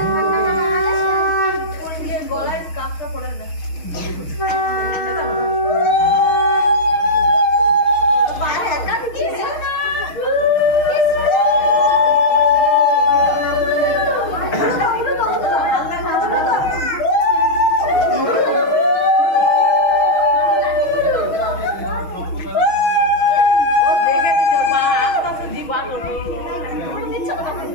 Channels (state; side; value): late; right; 6.3 ms